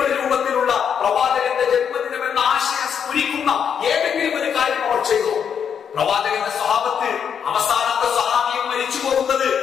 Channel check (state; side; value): quieter; right; 7.6 dB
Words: ഒരു രൂപത്തിലുള്ള പ്രവാചകന്റെ ജന്മദിനം എന്ന ആശയം സ്ഫുരിക്കുന്ന ഏതെങ്കിലും ഒരു കാര്യം അവർ ചെയ്തു? പ്രവാചകന്റെ സ്വഹാബത്ത് അവസാനത്തെ സ്വഹാബിയും മരിച്ചു പോകുന്നത്